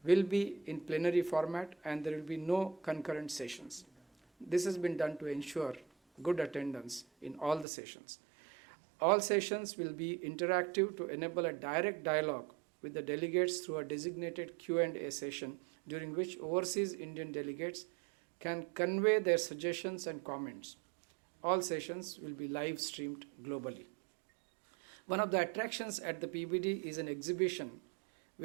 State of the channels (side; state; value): left; drops out; at 7.7 s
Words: will be in plenary format and there will be no concurrent sessions. This has been done to ensure good attendance in all the sessions. All sessions will be interactive to enable a direct dialogue with the delegates through a designated Q&A session during which overseas Indian delegates can convey their suggestions and comments. All sessions will be live streamed globally. One of the attractions at the PBD is an exhibition